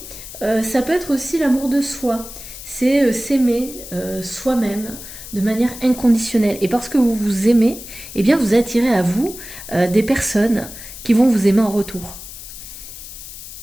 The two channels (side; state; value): left; noise; hiss, 13 dB below the sound